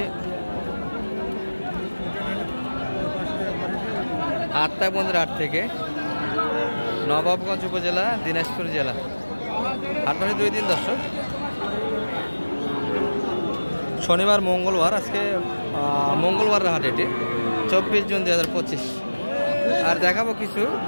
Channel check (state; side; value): inverted; both; correlation -1.00